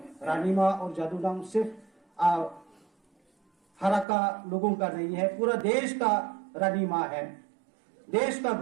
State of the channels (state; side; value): drops out; left; at 4.0 s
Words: रानी माँ और जादूनाम सिर्फ हराका लोगों का नहीं है, पूरा देश का रानी माँ है, देश का